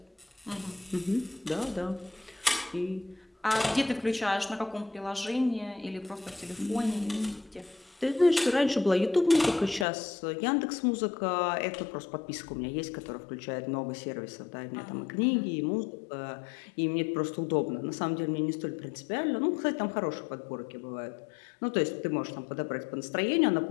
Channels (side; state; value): right; drops out; at 9.9 s